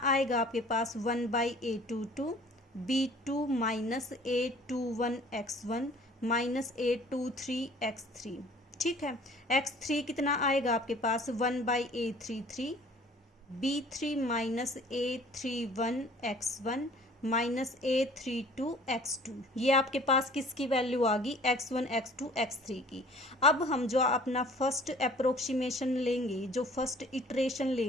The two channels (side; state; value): both; normal; correlation 0.51